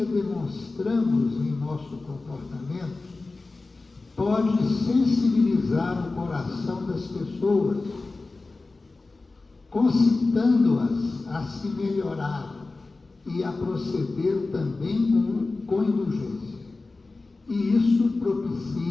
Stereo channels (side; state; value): right; quieter; 3.5 dB